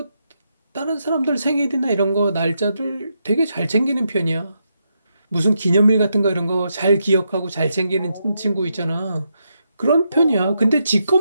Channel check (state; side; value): inverted; both; correlation -0.82